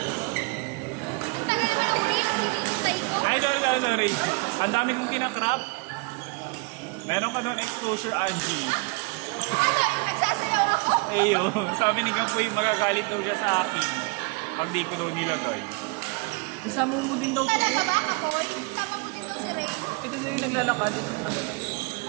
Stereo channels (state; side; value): quieter; left; 29.0 dB